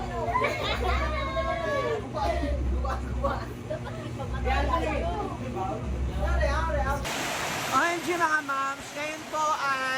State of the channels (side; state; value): both; identical; correlation 1.00